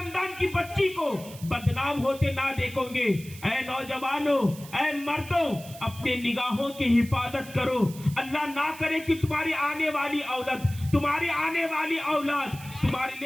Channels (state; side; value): noise; right; hiss, 17 dB below the sound